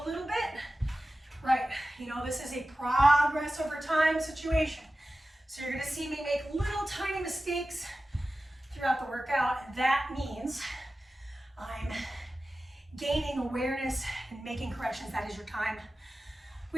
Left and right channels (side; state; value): both; normal; correlation 0.95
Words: little bit. Right, you know, this is a progress over time situation. So you're gonna see me make little tiny mistakes throughout the workout. That means I'm gaining awareness and making corrections. That is your time.